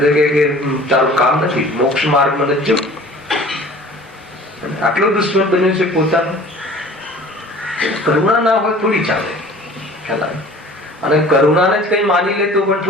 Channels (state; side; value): normal; both; correlation 0.46